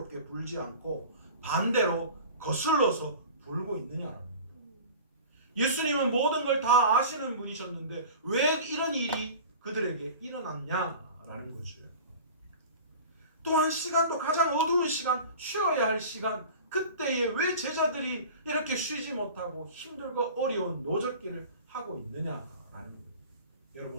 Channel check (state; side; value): inverted; both; correlation -0.38